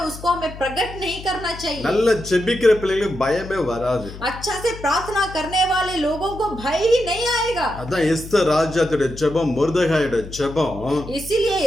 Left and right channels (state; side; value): noise; left; hum, 13 dB below the sound